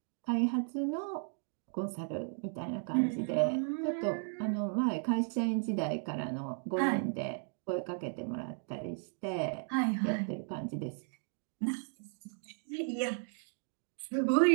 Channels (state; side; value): silent; left; 54 dB below the other